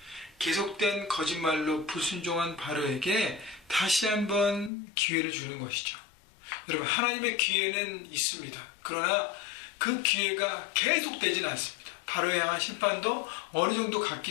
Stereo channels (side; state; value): right; drops out; at 4.7 s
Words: 계속된 거짓말로 불순종한 바로에게 다시 한번 기회를 주는 것이죠. 여러분, 하나님의 기회는 있습니다. 그러나 그 기회가 계속되지는 않습니다. 바로에 향한 심판도 어느 정도